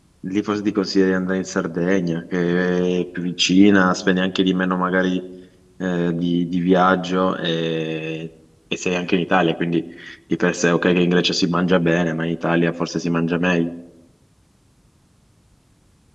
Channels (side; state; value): both; identical; correlation 1.00